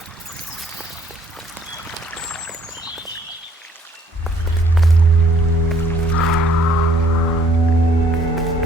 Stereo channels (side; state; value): both; normal; correlation 0.61